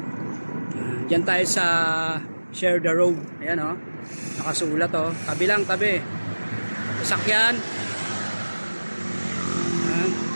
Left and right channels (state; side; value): inverted; both; correlation -1.00